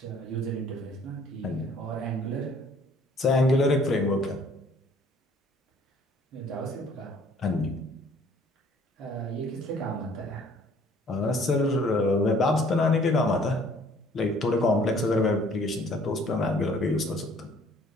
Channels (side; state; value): both; normal; correlation 0.57